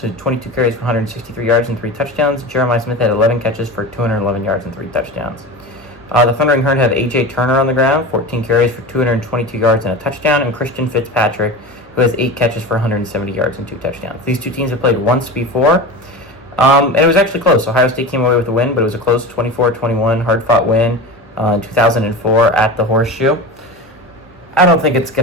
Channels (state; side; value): normal; both; correlation 0.28